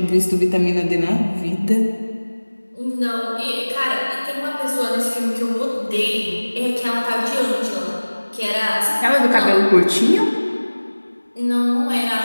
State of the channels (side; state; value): both; inverted; correlation -1.00